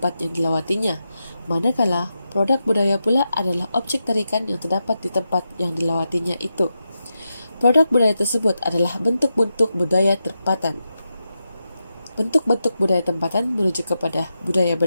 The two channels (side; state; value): both; inverted; correlation -0.88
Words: yang dilawatinya, manakala produk budaya pula adalah objek tarikan yang terdapat di tempat yang dilawatinya itu. Produk budaya tersebut adalah bentuk-bentuk budaya tempatan. Bentuk-bentuk budaya tempatan merujuk kepada budaya